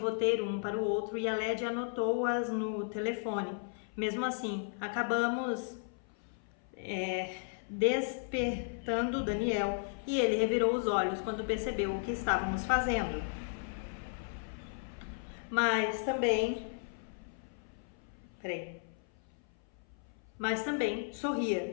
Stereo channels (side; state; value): right; silent; 55 dB below the other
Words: um para o outro e a Led anotou-as no telefone. Mesmo assim, acabamos despertando Daniel e ele revirou os olhos quando percebeu o que estávamos fazendo. Mas também